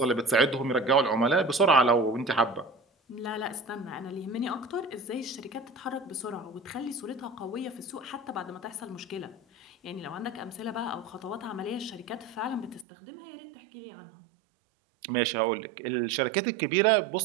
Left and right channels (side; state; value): left; drops out; at 12.9 s